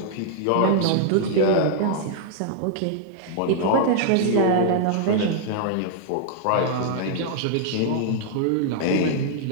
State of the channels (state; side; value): different; both; correlation -0.01